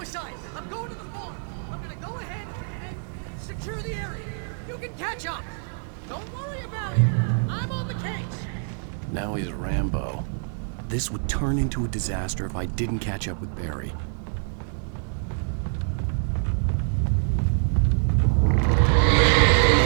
I'm going to the farm! I'm gonna go ahead and secure the area. You can catch up. Don't worry about it. I'm on the case. Now he's Rambo. This would turn into a disaster if I didn't catch up with Barry.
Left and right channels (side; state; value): left; silent; 60 dB below the other